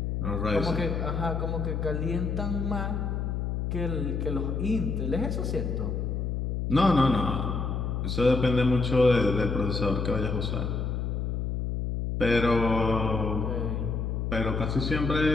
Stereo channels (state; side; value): noise; left; hum, 1 dB below the sound